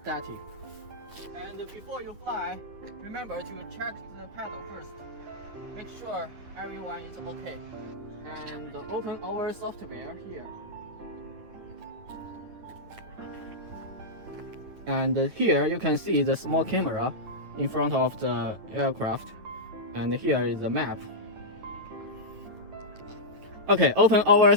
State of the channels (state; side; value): late; left; 9.7 ms